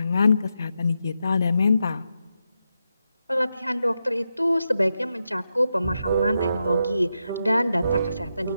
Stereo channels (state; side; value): inverted; both; correlation -0.86